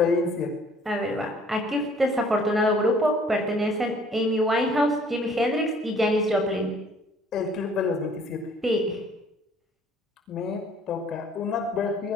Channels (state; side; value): normal; both; correlation 0.57